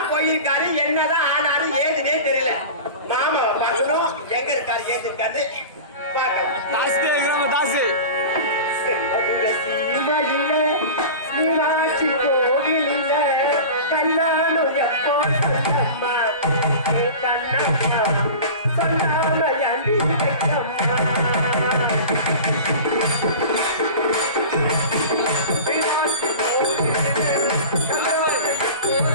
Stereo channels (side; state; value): both; inverted; correlation -0.34